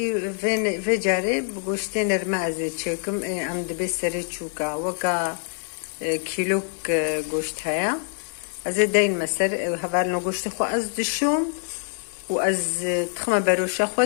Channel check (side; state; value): right; silent; 59 dB below the other